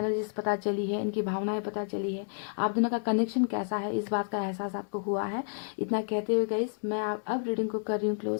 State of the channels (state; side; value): silent; right; digital silence